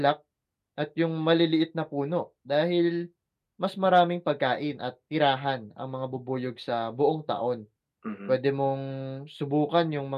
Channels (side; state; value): both; identical; correlation 1.00